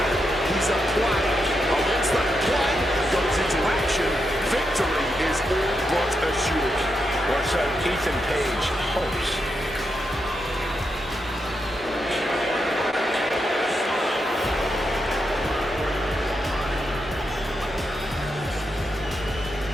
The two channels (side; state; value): both; normal; correlation 0.84